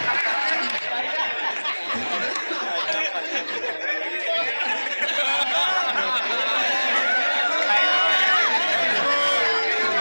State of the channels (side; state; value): both; inverted; correlation -1.00